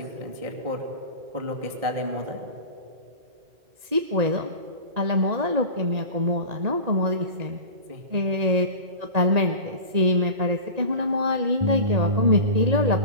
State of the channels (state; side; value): late; left; 1.9 ms